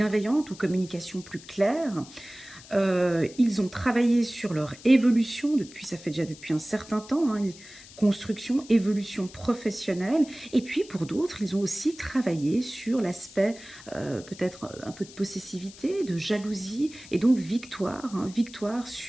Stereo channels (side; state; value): left; noise; hiss, 19 dB below the sound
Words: ou communication plus claire. Ils ont travaillé sur leur évolution ça fait déjà depuis un certain temps, hein, construction, évolution professionnelle. Et puis pour d'autres, ils ont aussi travaillé sur l'aspect peut-être un peu de possessivité, de jalousie, et donc victoire, hein, victoire